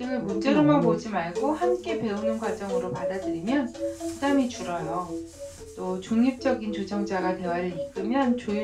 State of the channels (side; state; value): both; identical; correlation 1.00